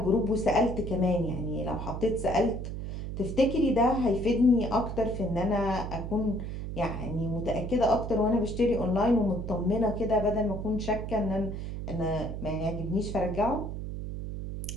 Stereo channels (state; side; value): noise; right; hum, 6 dB below the sound